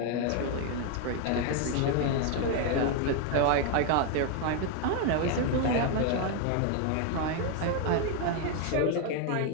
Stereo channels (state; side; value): different; both; correlation 0.01